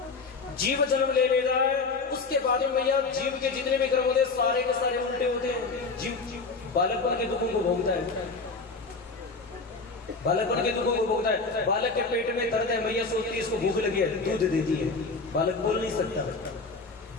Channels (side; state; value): right; quieter; 4.1 dB